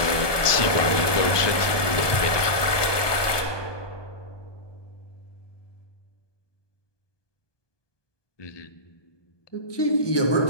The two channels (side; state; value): right; late; 1.2 ms